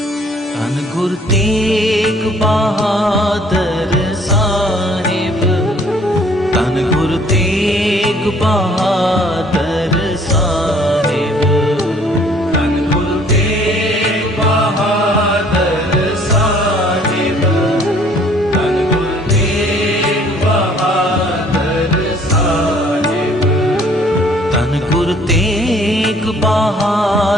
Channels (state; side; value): normal; both; correlation 0.58